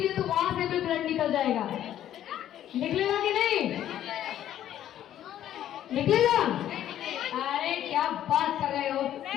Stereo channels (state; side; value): quieter; right; 11.5 dB